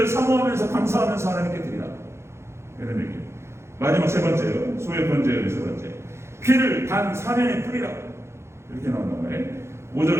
사모하면서 감사하면서 하나님께 드리라. 이런 얘기. 마지막 세 번째요. 소의 번제의 세 번째. 피를 단 사면에 뿌리라. 이렇게 나온단 말이에요.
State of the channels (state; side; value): late; left; 0.13 ms